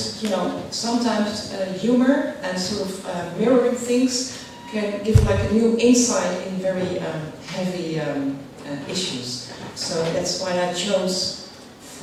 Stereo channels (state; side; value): identical; both; correlation 1.00